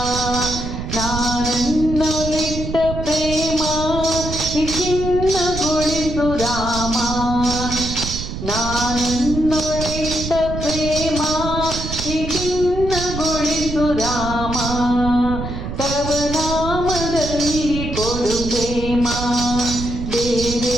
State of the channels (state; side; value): noise; right; rumble, 6 dB below the sound